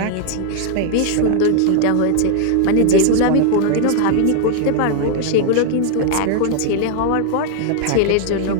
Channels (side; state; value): both; different; correlation 0.00